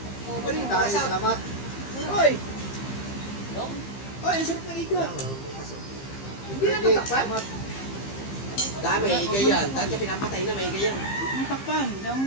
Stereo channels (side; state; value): right; late; 15 ms